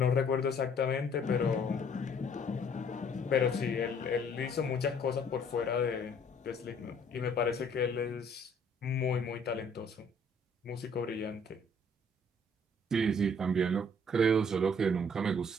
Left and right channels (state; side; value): normal; both; correlation 0.60